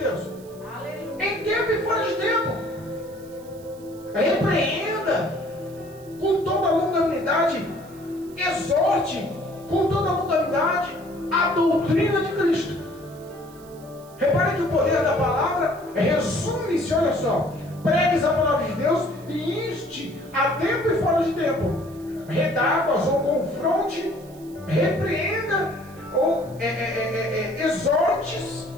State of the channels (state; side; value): noise; right; hiss, 24 dB below the sound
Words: Aleluia. Em tempo e fora de tempo. Repreenda com toda a longanimidade, exorte com toda a longanimidade a doutrina de Cristo. Repare que o poder da palavra resume-se, olha só, pregues a palavra de Deus e inste a tempo e fora de tempo, redarguas ou confronte, repreenda ou exortes